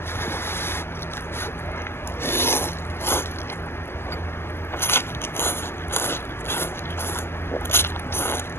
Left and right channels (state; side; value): late; right; 0.12 ms